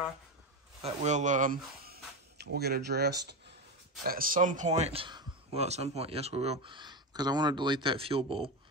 that we'll get addressed at some point. Well, at some point, yes, we will, because I want to delete that fuel bowl.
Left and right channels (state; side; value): normal; both; correlation 0.16